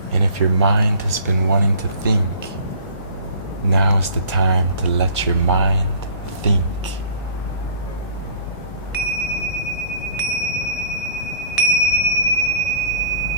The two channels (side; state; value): both; inverted; correlation -0.48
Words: And if your mind has been wanting to think, now is the time to let your mind think.